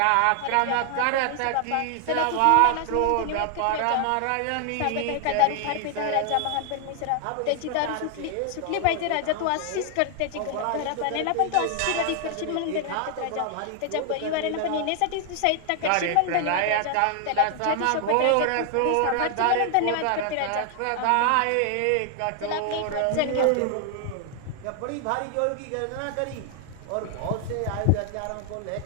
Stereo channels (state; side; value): different; both; correlation 0.00